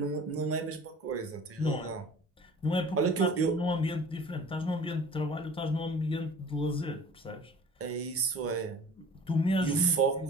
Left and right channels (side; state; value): both; normal; correlation 0.44